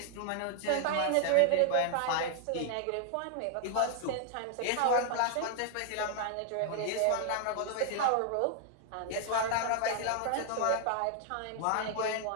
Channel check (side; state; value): both; different; correlation 0.00